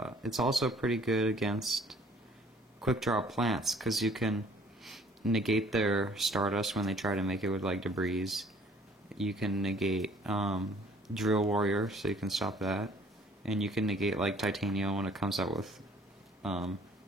It's also pretty good against quick draw plants, because you can negate their Stardust when they try to make it with like debris. You can negate Drill Warrior, so you can stop that, and you can negate like Titania when it comes out with Lone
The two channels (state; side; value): normal; both; correlation 0.57